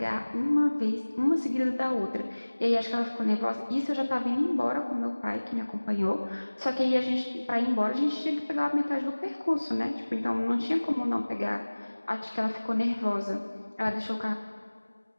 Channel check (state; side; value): inverted; both; correlation -1.00